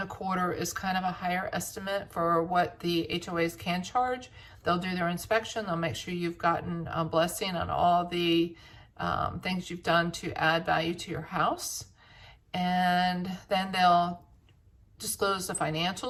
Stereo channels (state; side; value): identical; both; correlation 1.00